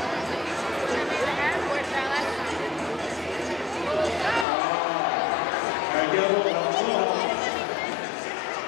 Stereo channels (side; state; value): right; drops out; at 4.5 s